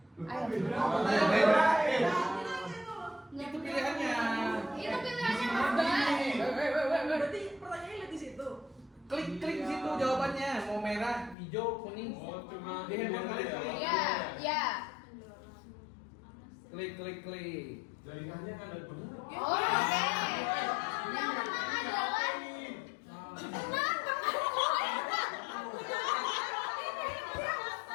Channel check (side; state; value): right; drops out; at 11.4 s